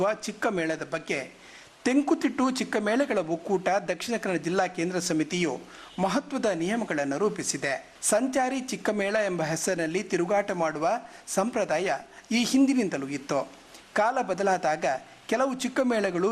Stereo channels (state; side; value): identical; both; correlation 1.00